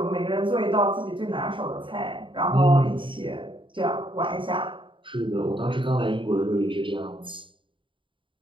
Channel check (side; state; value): left; late; 0.24 ms